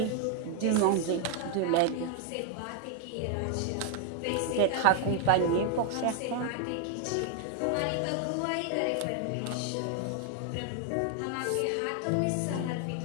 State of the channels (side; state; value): both; different; correlation 0.00